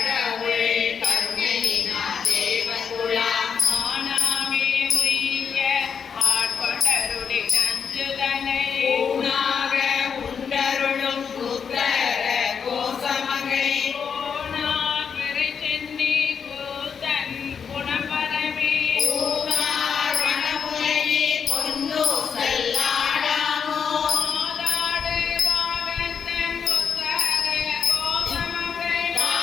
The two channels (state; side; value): quieter; right; 6.7 dB